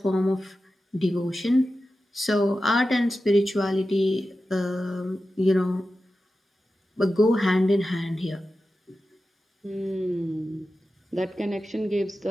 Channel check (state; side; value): normal; both; correlation 0.93